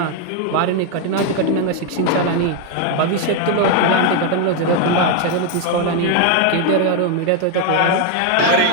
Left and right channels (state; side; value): different; both; correlation 0.01